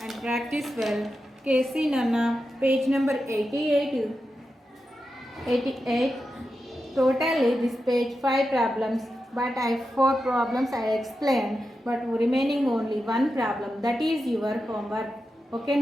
and practice well. Casey Nana, page number 88. Totally this page 5 problems, but 4 problems I explained, but remaining only 1 problem. That is your homework. Okay,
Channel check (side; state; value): both; normal; correlation 0.89